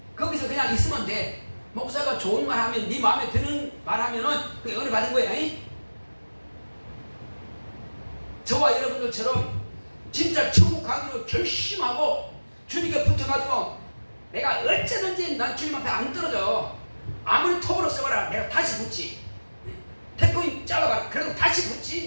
거기서 그냥 있으면 돼. 목사가 좋은 말 하면, 네 마음에 드는 말 하면은 그게 은혜 받은 거야. 저와 여러분들처럼 진짜 천국 가기로 결심하고 주님께 붙어가지고 내가 어쩌든지 난 주님 앞에 안 떨어져. 아무리 톱으로 써봐라. 내가 다시 붙지. 태풍이 잘라봐라. 그래도 다시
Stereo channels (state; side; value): inverted; both; correlation -1.00